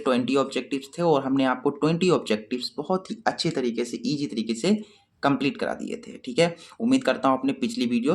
20 ऑब्जेक्टिव्स थे और हमने आपको 20 ऑब्जेक्टिव्स बहुत ही अच्छे तरीके से, ईजी तरीके से कंप्लीट करा दिए थे। ठीक है, उम्मीद करता हूँ आपने पिछली वीडियो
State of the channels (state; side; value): identical; both; correlation 1.00